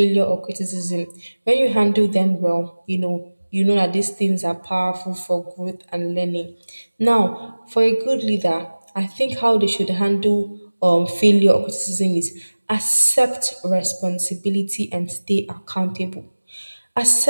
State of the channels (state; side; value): inverted; both; correlation -1.00